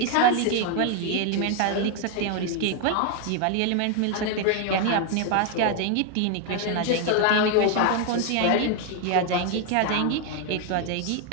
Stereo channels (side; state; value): both; different; correlation 0.01